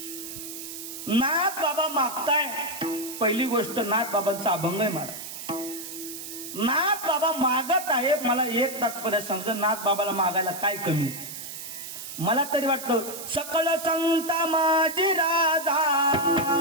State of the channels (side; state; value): right; noise; hiss, 10 dB below the sound